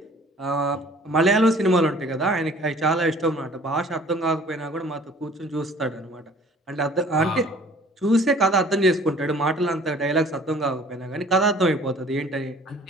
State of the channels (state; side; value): normal; both; correlation 0.52